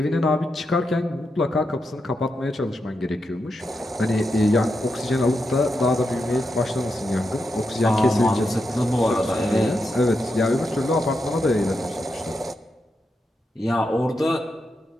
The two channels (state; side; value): normal; both; correlation 0.85